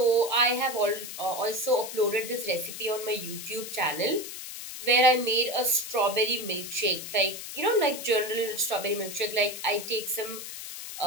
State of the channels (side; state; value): left; noise; hiss, 9 dB below the sound